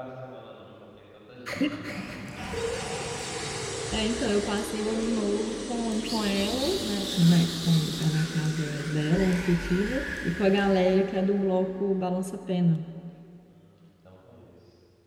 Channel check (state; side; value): identical; both; correlation 1.00